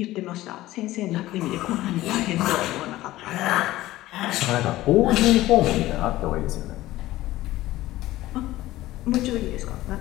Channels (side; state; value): right; quieter; 16.4 dB